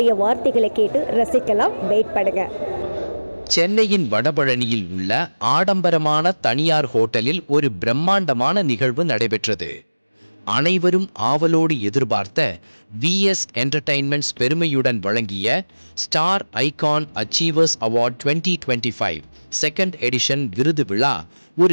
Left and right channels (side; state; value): both; inverted; correlation -1.00